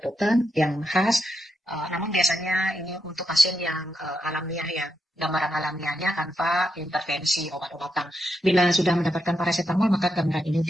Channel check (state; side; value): normal; both; correlation 0.83